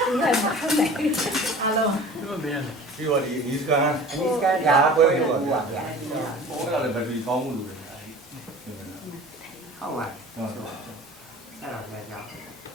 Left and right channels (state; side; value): normal; both; correlation 0.41